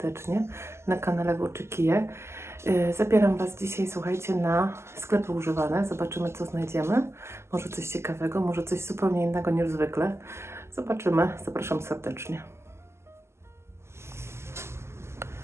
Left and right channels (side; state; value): left; late; 0.13 ms